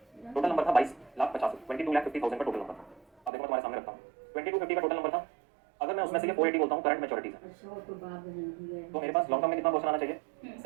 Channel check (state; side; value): drops out; left; at 3.3 s